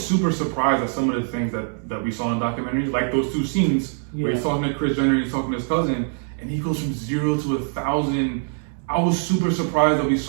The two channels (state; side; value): silent; left; 60 dB below the other